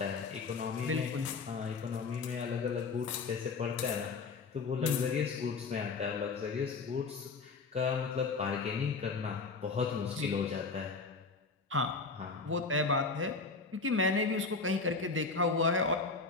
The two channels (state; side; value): quieter; right; 4.3 dB